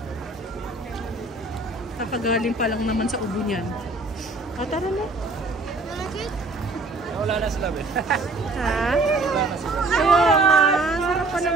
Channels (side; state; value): left; quieter; 3.1 dB